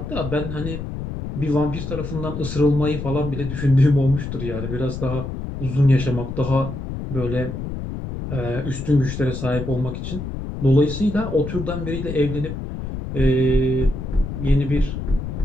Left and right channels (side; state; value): left; noise; rumble, 6 dB below the sound